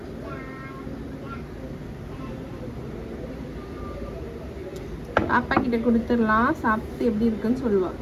அப்பா கிட்ட கொடுத்துடலாம். சாப்பிட்டு எப்படி இருக்குன்னு சொல்லுவா.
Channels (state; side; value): identical; both; correlation 1.00